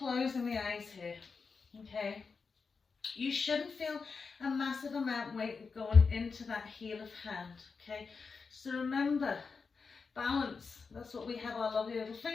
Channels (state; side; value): quieter; right; 5.0 dB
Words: the eyes here, okay? You shouldn't feel a massive amount of weight going into that heel of hand, okay? So remember, balance, that's what we have our lovely little